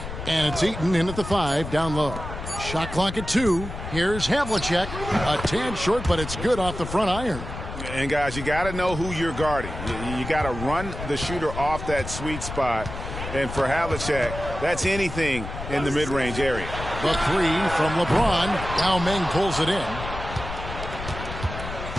And it's Eaton in at the 5, down low. Shot clock at 2. Here's Havlicek. A tad short, but it's good off the front iron. And, guys, you got to know who you're guarding. You got to run the shooter off that sweet spot. And for Havlicek, that's anything in the mid-range area. The 3 from LeBron. Yao Ming pulls it in.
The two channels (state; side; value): noise; left; rumble, 8 dB below the sound